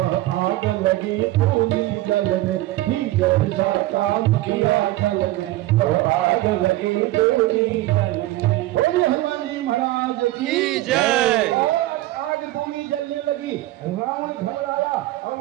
आग लगी पूरी जल में। ही जैसा काम किया जल में वह आग लगी पूरी जल में। बोलिए हनुमान जी महाराज की जय। जलने लगी, रावण घबराया और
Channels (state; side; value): quieter; left; 16.9 dB